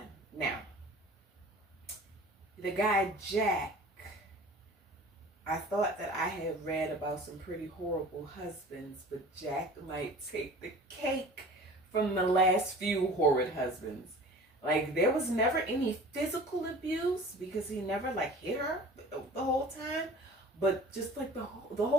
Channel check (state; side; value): normal; both; correlation 0.43